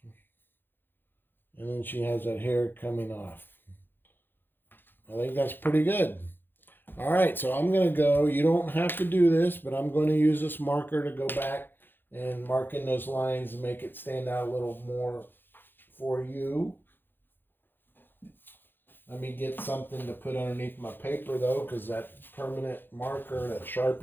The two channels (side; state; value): right; late; 0.097 ms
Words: And then she has that hair coming off. I think that's pretty good. All right, so I'm going to go. You don't have to do this, but I'm going to use this marker to go back and mark in those lines and make it stand out a little more for you. Let me get something to put underneath my paper, though, because that permanent marker, that